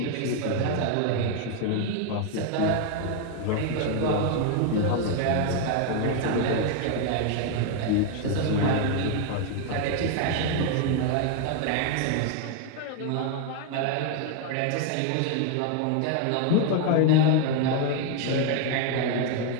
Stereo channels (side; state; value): both; different; correlation 0.01